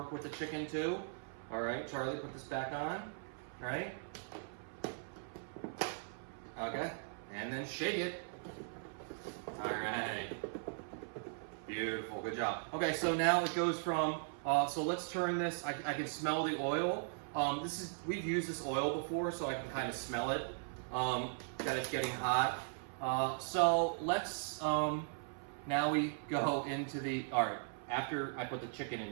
with the chicken too. All right, Charlie, put this back on. All right. Okay, and then shake it. All right. Beautiful, good job. Okay, so now it goes from, so let's turn this, I can smell the oil. We've used this oil before, so I can kind of smell it, that it's getting hot. So let's, now we go into the, all right, after I put the chicken in,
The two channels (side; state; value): left; silent; 52 dB below the other